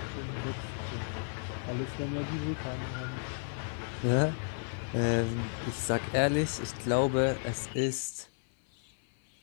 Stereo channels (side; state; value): right; silent; 56 dB below the other